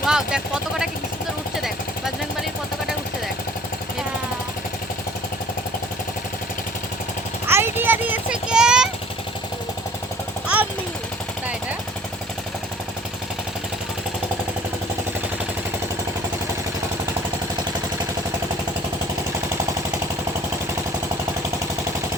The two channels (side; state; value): both; normal; correlation 0.51